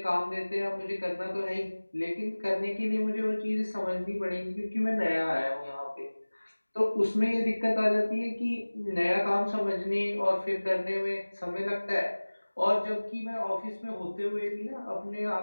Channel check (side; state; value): both; inverted; correlation -1.00